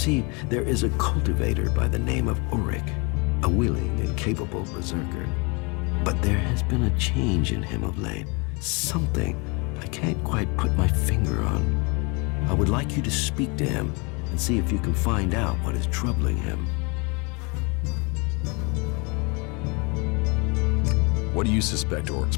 there is a cultivator by the name of Ulrich, a willing and capable berserker. But there has been a change in him of late. Something I can't quite put my finger on. I would like you to speak to him and see if you can find out what is troubling him. What do you suspect Oric's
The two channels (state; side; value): quieter; right; 30.5 dB